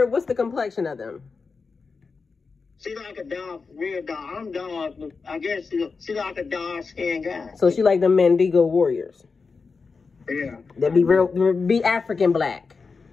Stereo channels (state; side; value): quieter; right; 4.7 dB